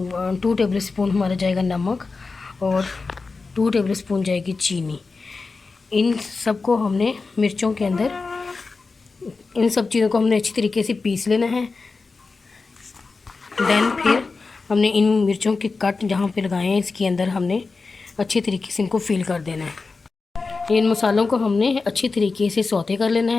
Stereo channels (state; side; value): quieter; right; 4.2 dB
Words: टेबल स्पून हमारा जाएगा नमक और 2 टेबल स्पून जाएगी चीनी। इन सब को हमने मिर्चों के अंदर इन सब चीज़ों को हमने अच्छी तरीके से पीस लेना है। देन फिर हमने इन मिर्चों के कट जहाँ पे लगाए हैं इसके अंदर हमने अच्छी तरीके से इनको फिल कर देना है। इन मसालों को हमने अच्छी तरीके से सौते कर लेना